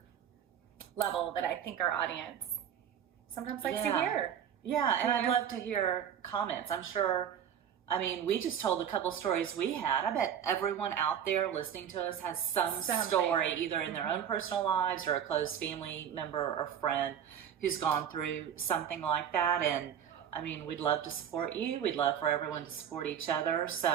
level that I think our audience sometimes likes to hear. Yeah, and I'd love to hear comments. I'm sure, we just told a couple stories we had. I bet everyone out there listening to us has some story, either in their own personal lives or a close family member or friend who's gone through something like that. And, we'd love to support you. We'd love for everyone to support each other.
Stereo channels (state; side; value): quieter; left; 8.9 dB